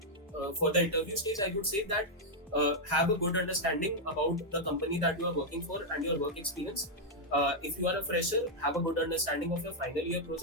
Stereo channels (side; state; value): both; normal; correlation -0.02